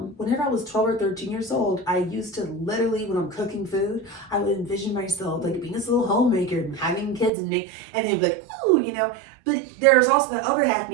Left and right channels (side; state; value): left; drops out; at 7.3 s